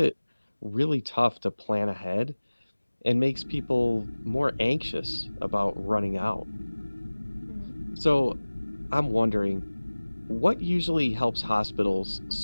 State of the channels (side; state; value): both; inverted; correlation -1.00